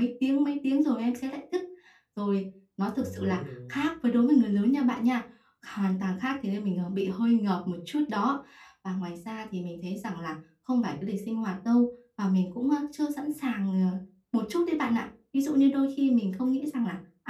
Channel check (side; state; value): both; identical; correlation 1.00